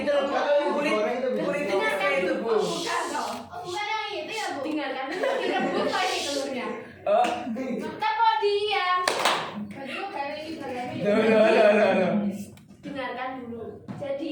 itu loh, kulitnya kayak itu, Bu. Bukan dong. Oh bukan yang itu ya Bu. Dengarkan Direbus lagi telurnya. Oh. kita mau diam. Baju kayak ini bagami. Loh. Dengarkan dulu. Jadi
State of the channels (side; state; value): both; identical; correlation 1.00